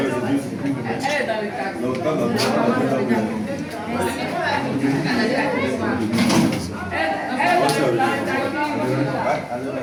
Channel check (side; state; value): both; identical; correlation 1.00